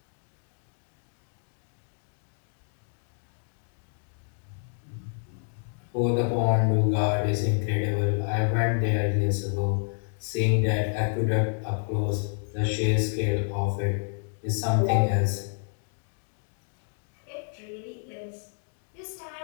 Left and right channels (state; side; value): silent; right; digital silence